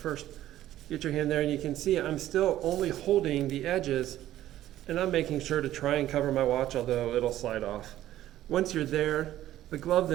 Get your hand there and you can see I'm still only holding the edges, and I'm making sure to try and cover my watch, although it'll slide off. Once you're there, the glove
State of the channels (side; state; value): left; quieter; 13.4 dB